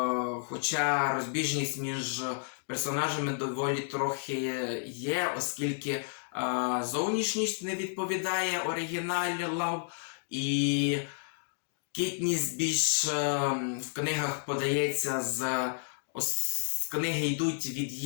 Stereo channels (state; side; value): silent; right; digital silence